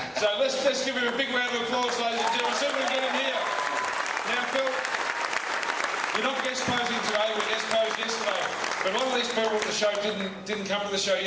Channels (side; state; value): both; identical; correlation 1.00